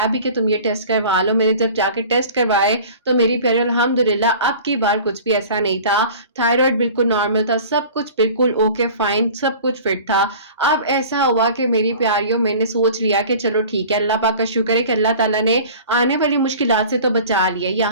भी कि तुम ये टेस्ट करवा लो। मैंने जब जाके टेस्ट करवाए तो मेरी प्यारी अल्हम्दुलिल्लाह अब की बार कुछ भी ऐसा नहीं था, थायराइड बिल्कुल नॉर्मल था, सब कुछ बिल्कुल ओके फाइन, सब कुछ फिट था। अब ऐसा हुआ कि मेरी प्यारियों मैंने सोच लिया कि चलो ठीक है, अल्लाह पाक का शुक्र है कि अल्लाह ताला ने आने वाली मुश्किलात से तो बचा लिया,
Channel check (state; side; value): inverted; both; correlation -0.42